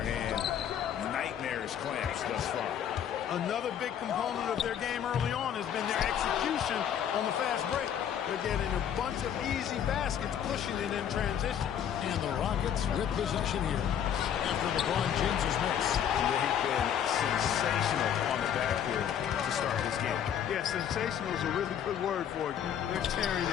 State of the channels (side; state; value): right; quieter; 9.2 dB